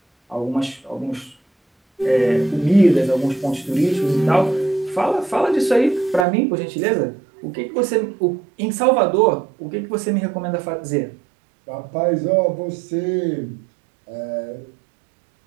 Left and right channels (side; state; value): left; drops out; at 6.2 s